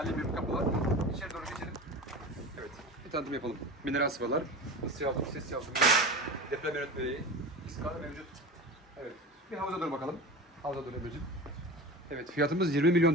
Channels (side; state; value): both; normal; correlation 0.31